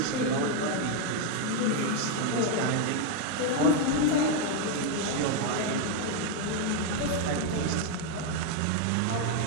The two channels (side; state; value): both; different; correlation 0.01